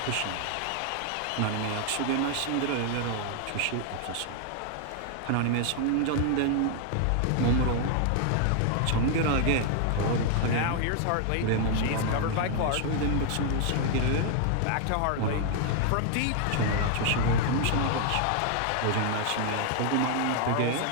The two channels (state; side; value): different; both; correlation 0.00